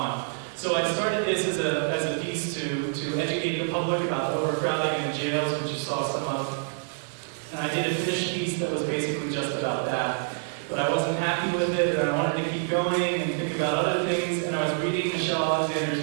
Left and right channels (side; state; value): left; silent; 60 dB below the other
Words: So I started this as a piece to educate the public about the overcrowding in the jails, which you saw some of. And I did a finished piece that was basically just about that. But I wasn't happy with it, and I wanted to keep going and think about other things, and I was reading Michelle